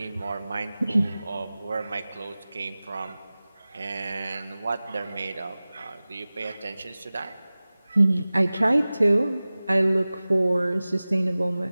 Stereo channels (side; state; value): both; inverted; correlation -0.98